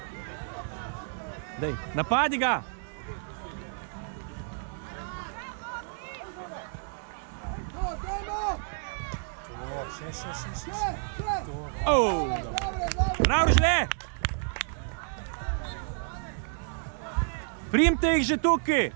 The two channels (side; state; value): left; silent; 58 dB below the other